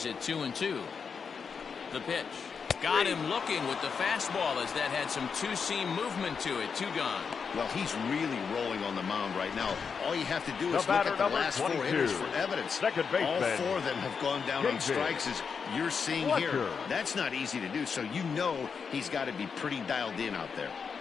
at 2-2. The pitch. Got him looking with the fastball as that had some two-seam movement to it. 2 gone. Well, he's really rolling on the mound right now. All you have to do is look at the last 4 hitters for evidence. All 4 of them have gone down on strikes, as you're seeing here. That's not easy to do, so you know he's got to be pretty dialed in out there.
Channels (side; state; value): right; quieter; 6.0 dB